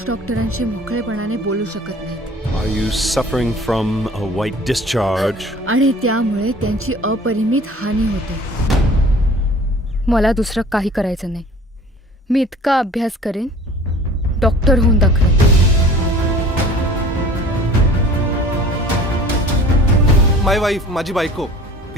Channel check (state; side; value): normal; both; correlation 0.47